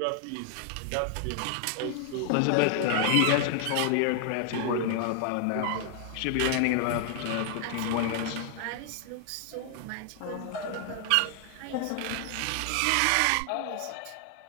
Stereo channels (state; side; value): different; both; correlation 0.00